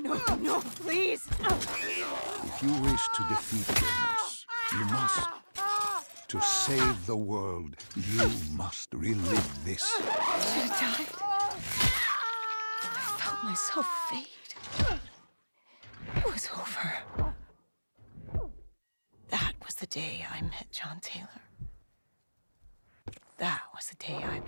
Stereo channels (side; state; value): both; inverted; correlation -1.00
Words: must. No, please! If you wish to defeat Deimos, you must. To save the world, you must relive this. I should have died. I felt myself fade. It was over. That was the day I met John Taylor. That was the day I